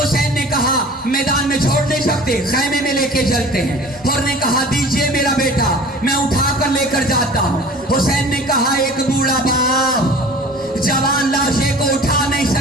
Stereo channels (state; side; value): normal; both; correlation 0.43